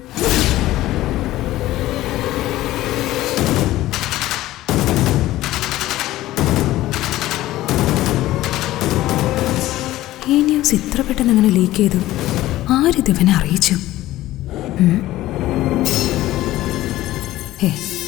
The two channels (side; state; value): right; quieter; 15.8 dB